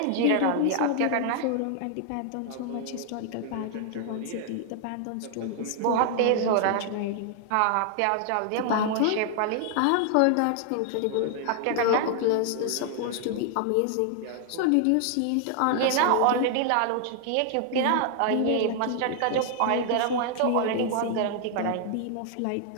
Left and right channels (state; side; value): different; both; correlation 0.00